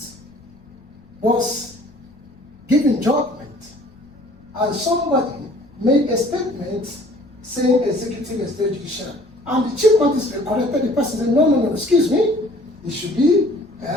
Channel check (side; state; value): left; noise; rumble, 28 dB below the sound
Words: was giving judgment, and somebody made a statement saying executive estate judicial, and the chief magistrate corrected the person, said, no, excuse me, it should be